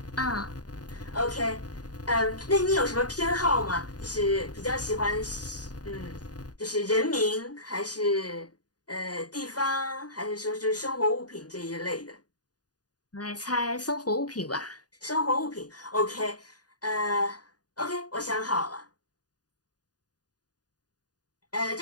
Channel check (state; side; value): late; right; 0.68 ms